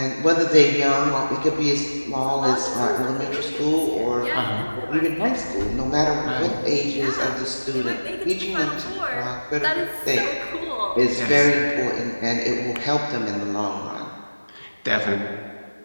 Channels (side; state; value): both; inverted; correlation -1.00